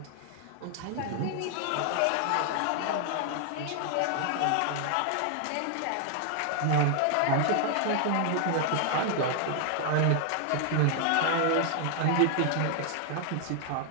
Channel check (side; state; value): both; different; correlation 0.00